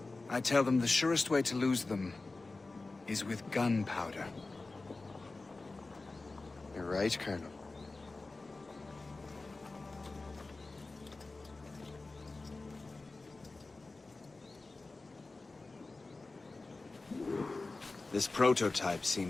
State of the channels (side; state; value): right; quieter; 3.4 dB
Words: I tell them the surest way to lose them is with gunpowder. You're right, Colonel. This prototype